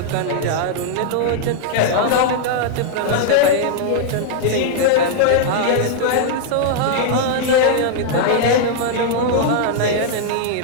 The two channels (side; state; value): both; different; correlation -0.01